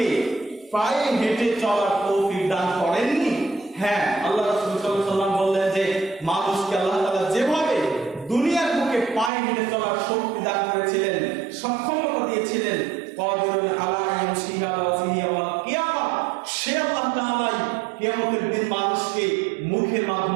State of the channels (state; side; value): drops out; left; at 9.3 s